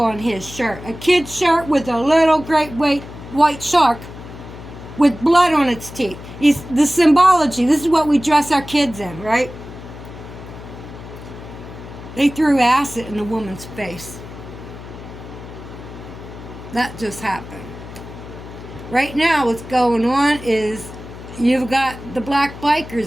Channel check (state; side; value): noise; left; hum, 14 dB below the sound